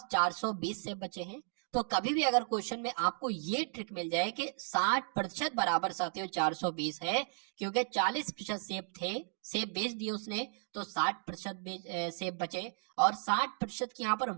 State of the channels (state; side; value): silent; left; 55 dB below the other